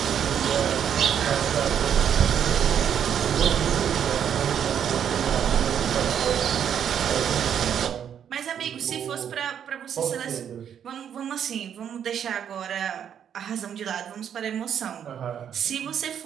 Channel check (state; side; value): quieter; left; 8.7 dB